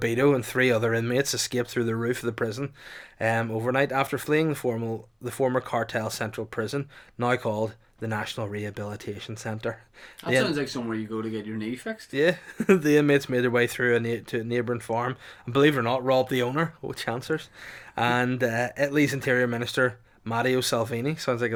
and 3 other inmates escaped through the roof of the prison overnight after fleeing the former cartel central prison, now called the National Rehabilitation Centre. That sounds like somewhere you go to get your knee fixed. Yeah, the inmates made their way through to a neighbouring farm and, believe it or not, robbed the owner. Oh, chancers. And Italy's Interior Minister Matteo Salvini, sounds like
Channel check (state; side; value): identical; both; correlation 1.00